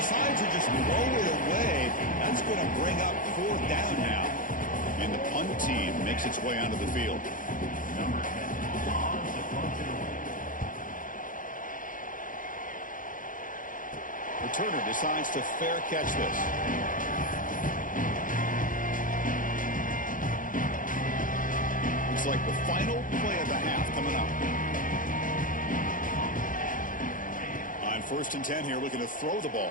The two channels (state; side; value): late; right; 0.39 ms